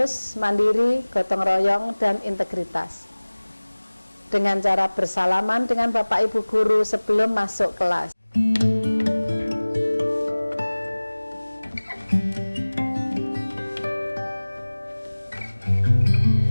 mandiri, gotong royong, dan integritas. Dengan cara bersalaman dengan Bapak Ibu Guru sebelum masuk kelas.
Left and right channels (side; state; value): both; inverted; correlation -1.00